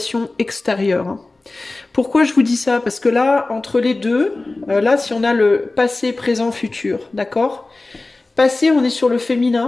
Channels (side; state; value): right; quieter; 3.2 dB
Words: extérieure. Pourquoi je vous dis ça? Parce que là, entre les deux, là, si on a le passé, présent, futur, d'accord? Passé, on est sur le